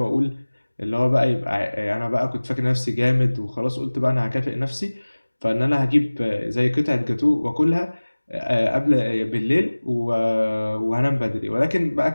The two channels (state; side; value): inverted; both; correlation -1.00